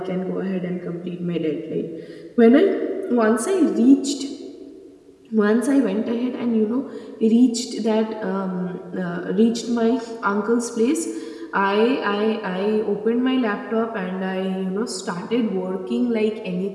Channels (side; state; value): both; identical; correlation 1.00